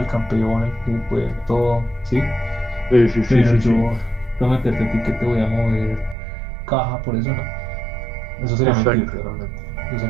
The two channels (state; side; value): drops out; left; at 6.2 s